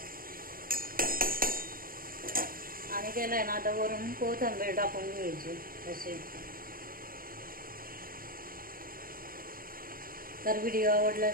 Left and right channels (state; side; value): late; left; 0.42 ms